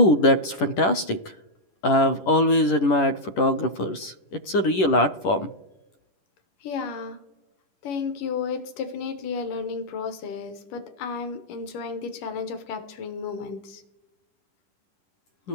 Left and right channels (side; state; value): right; late; 10 ms